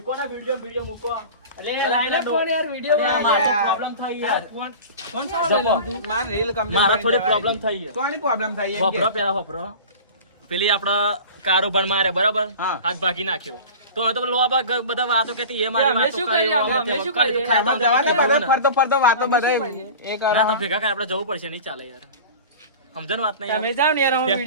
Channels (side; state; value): both; inverted; correlation -0.36